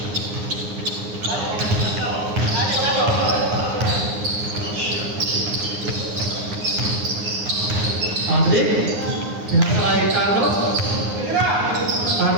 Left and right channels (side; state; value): left; late; 9.6 ms